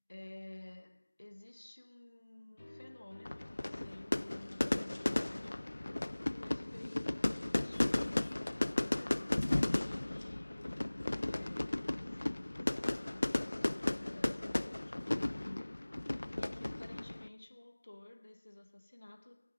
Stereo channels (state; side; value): inverted; both; correlation -1.00